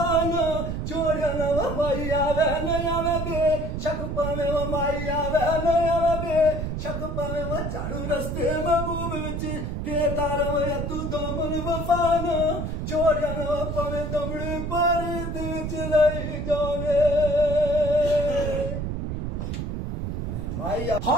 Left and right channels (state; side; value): noise; right; rumble, 3 dB below the sound